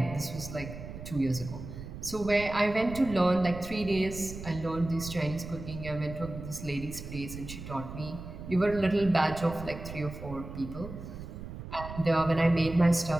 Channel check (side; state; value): right; noise; rumble, 11 dB below the sound